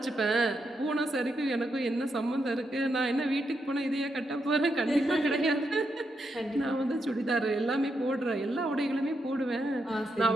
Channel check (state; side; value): normal; both; correlation 0.82